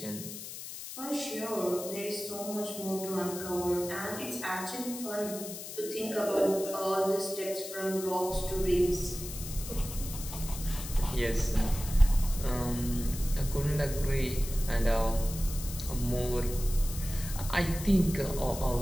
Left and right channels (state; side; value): noise; left; hiss, 10 dB below the sound